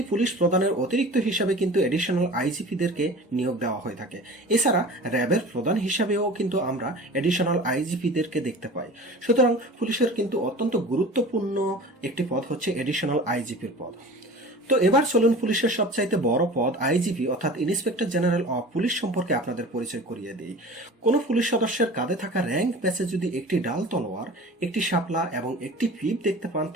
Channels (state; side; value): normal; both; correlation 0.39